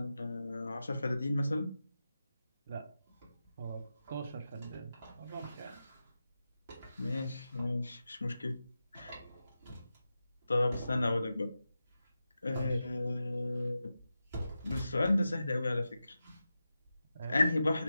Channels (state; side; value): inverted; both; correlation -0.92